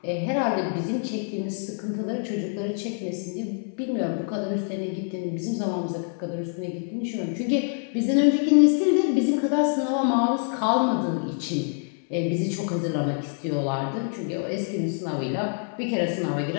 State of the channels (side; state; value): right; silent; 59 dB below the other